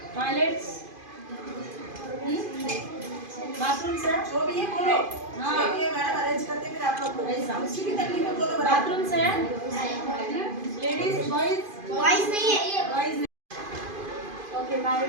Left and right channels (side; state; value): left; late; 2.5 ms